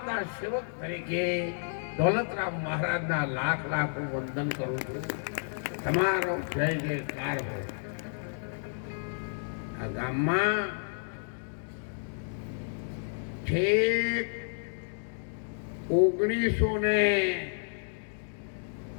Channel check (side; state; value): right; silent; digital silence